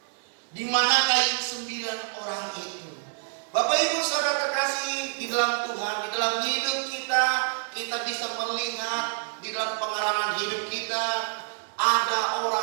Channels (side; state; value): left; silent; 60 dB below the other